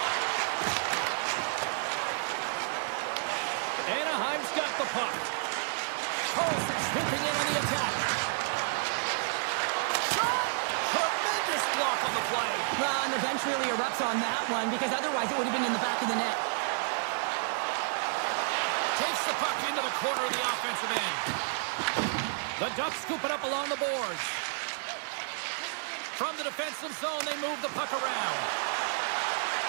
Anaheim's got the puck. Carlson sweeping in on the attack. Shot! Tremendous block on the play. Well, and the bench really erupts on that one because otherwise it would have been in the back of the net. Takes the puck into the corner of the offensive end. The Ducks scoop it up along the boards. From the defensive zone, they move the puck around.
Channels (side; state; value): left; silent; digital silence